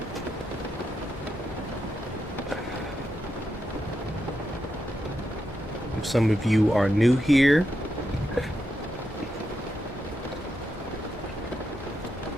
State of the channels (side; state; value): both; normal; correlation 0.85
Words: If some of you are new here,